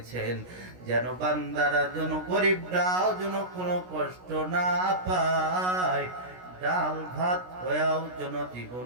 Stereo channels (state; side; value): late; left; 16 ms